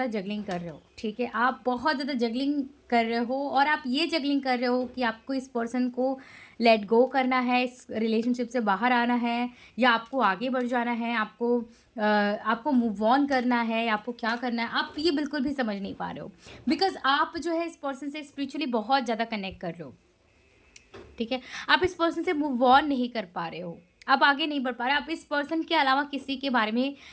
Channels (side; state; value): both; identical; correlation 1.00